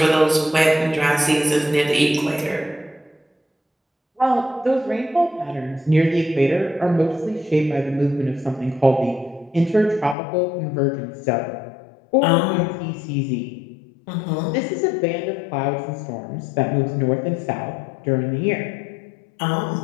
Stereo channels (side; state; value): right; drops out; at 10.2 s